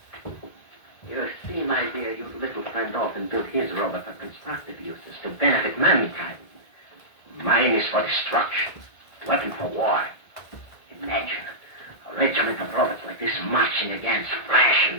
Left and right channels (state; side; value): late; right; 1.9 ms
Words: You see, my dear, your little friend often built his robot for constructive uses to benefit mankind. Mine is for destruction, weapon for war. Imagine a regiment of robots like this marching against flesh